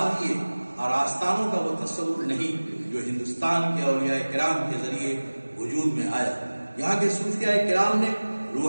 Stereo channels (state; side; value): inverted; both; correlation -1.00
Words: اور آستانوں کا وہ تصور نہیں جو ہندوستان کے اولیاء کرام کے ذریعے وجود میں آیا. یہاں کے صوفیاء کرام نے